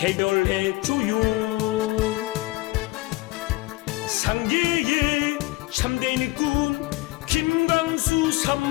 상계의 참된 일꾼 김광수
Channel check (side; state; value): right; quieter; 21.0 dB